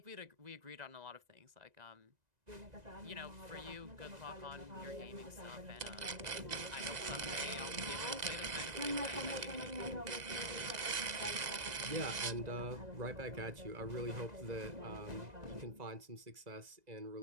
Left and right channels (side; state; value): left; late; 1.9 ms